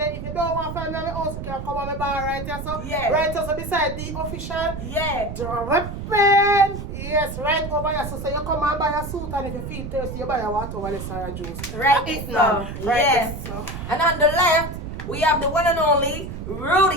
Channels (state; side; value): noise; right; rumble, 7 dB below the sound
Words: if you don't want to find me in the house, you can come on my bar right here. So, Yeah. right here, so beside the official Yeah. dripping. Yes, right over here. So you come and buy a suit, and if you feel thirsty, you buy a water over the Sarah juice. Right That's it so. now. Right Yes. there, so. And on the left, we have the one and only